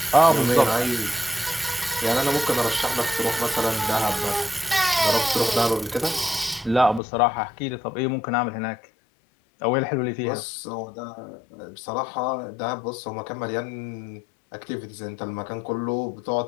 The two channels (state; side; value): drops out; right; at 7.0 s